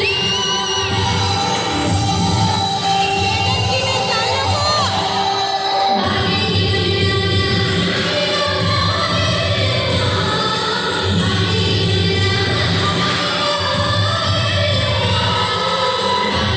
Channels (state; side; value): identical; both; correlation 1.00